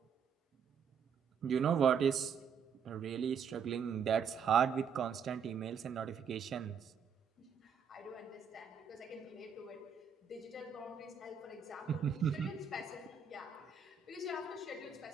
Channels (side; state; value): left; quieter; 6.7 dB